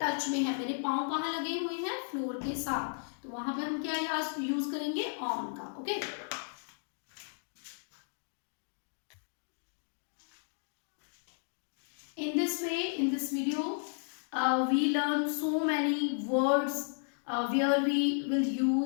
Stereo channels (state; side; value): silent; right; digital silence